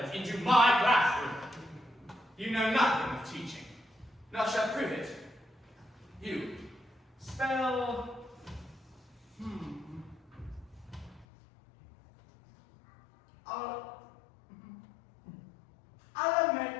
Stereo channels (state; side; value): drops out; right; at 11.2 s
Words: into my classroom? You know nothing of teaching. Nor shall prove it. You spell